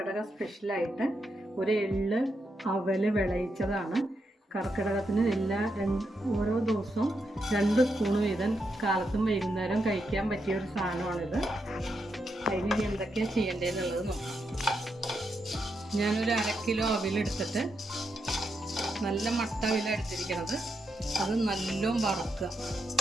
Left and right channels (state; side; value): normal; both; correlation 0.83